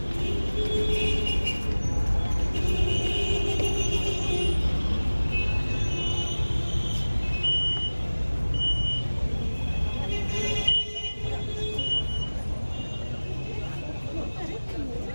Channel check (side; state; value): both; inverted; correlation -1.00